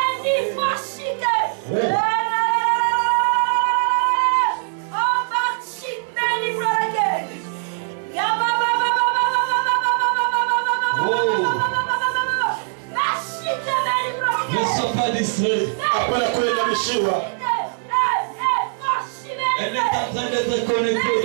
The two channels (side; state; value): left; silent; digital silence